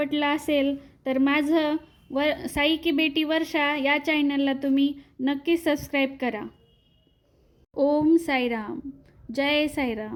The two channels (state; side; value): identical; both; correlation 1.00